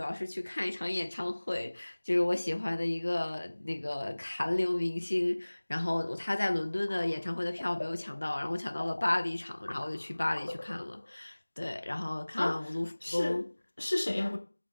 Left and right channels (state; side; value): inverted; both; correlation -1.00